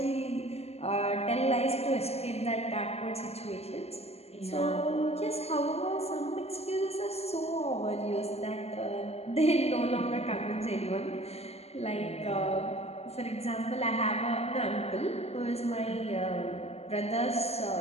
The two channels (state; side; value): late; right; 0.30 ms